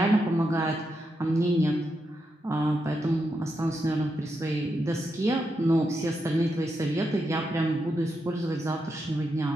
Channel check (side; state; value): both; normal; correlation 0.84